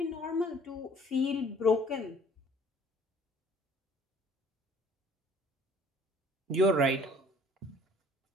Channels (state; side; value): normal; both; correlation 0.54